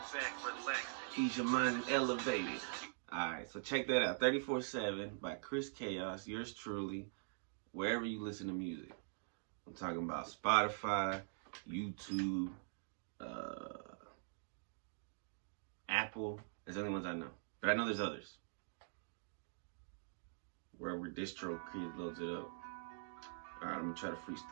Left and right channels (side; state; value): left; silent; digital silence